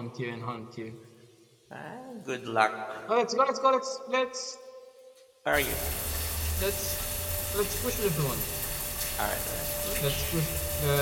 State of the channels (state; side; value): identical; both; correlation 1.00